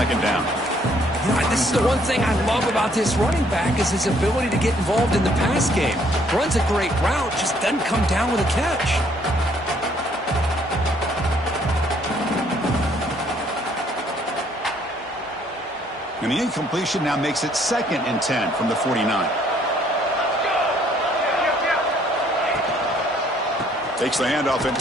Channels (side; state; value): both; normal; correlation 0.64